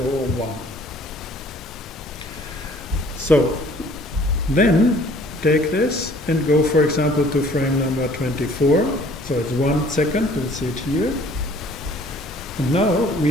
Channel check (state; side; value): normal; both; correlation 0.55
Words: 001. So then take this and go, for example, to frame number 24. So it's 1 second, we'll see it here. And now